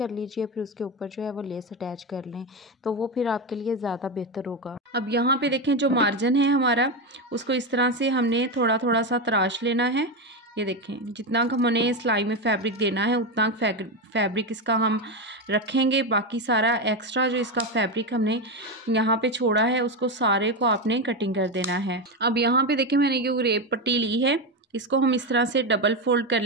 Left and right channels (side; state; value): both; normal; correlation 0.12